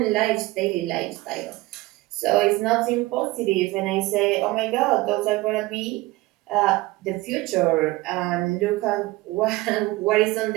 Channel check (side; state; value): left; quieter; 20.0 dB